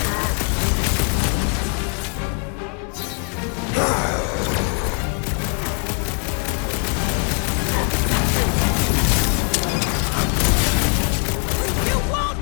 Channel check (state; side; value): quieter; right; 39.9 dB